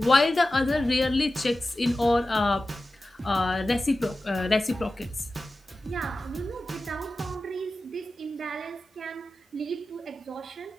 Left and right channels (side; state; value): both; normal; correlation 0.94